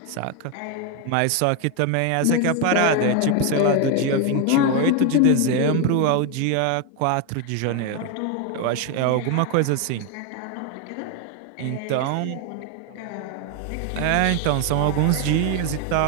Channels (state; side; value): different; both; correlation 0.01